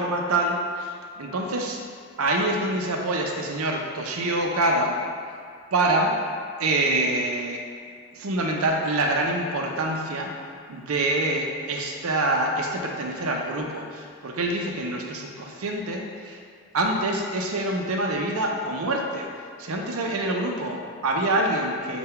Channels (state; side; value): normal; both; correlation 0.01